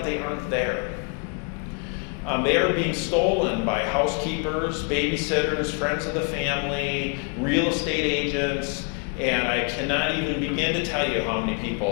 they aren't there. They are being stolen by housekeepers, babysitters, friends of the family, real estate agents, and I cannot even begin to tell you how many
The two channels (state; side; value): quieter; right; 38.7 dB